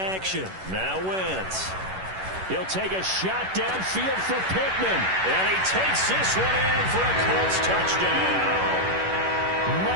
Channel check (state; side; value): late; left; 11 ms